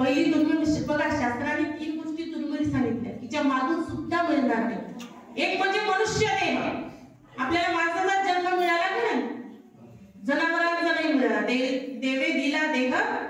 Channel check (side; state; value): both; identical; correlation 1.00